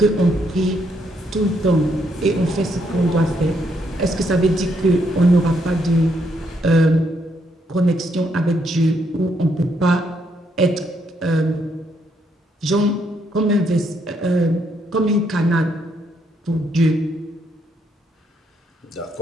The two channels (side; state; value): both; normal; correlation 0.75